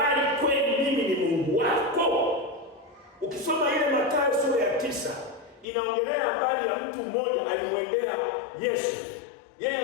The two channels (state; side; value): drops out; right; at 5.7 s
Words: kweli mimi ni Mungu wako? Ukisoma ile Mathayo sura ya 9 inaongelea habari ya mtu mmoja alimwendea Yesu. Yeye